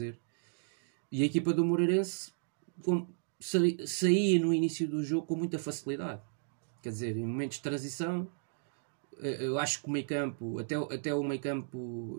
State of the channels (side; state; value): left; silent; digital silence